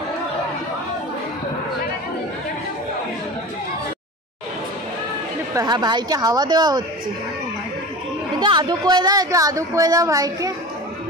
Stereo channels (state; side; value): normal; both; correlation 0.33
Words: হ্যাঁ, ভাইকে হাওয়া দেওয়া হচ্ছে। এটা আদু করে দাও, একটু আদু করে দাও ভাইকে।